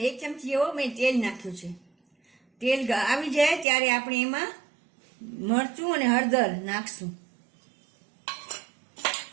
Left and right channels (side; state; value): left; drops out; at 3.7 s